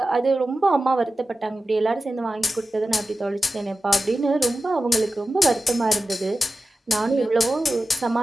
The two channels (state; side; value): normal; both; correlation 0.93